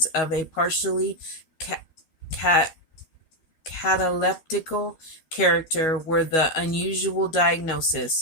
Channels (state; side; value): late; right; 13 ms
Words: of a partially ca- ca- cataleptical character were the unusual